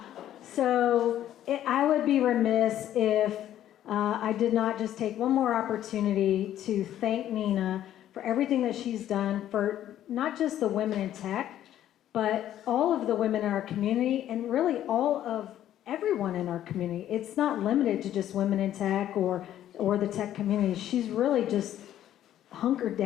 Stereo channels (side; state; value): right; quieter; 11.8 dB